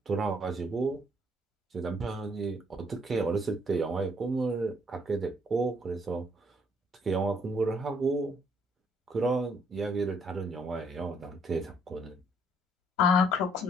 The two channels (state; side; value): normal; both; correlation 0.67